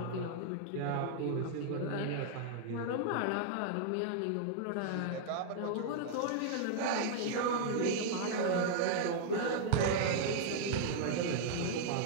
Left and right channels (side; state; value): both; different; correlation -0.01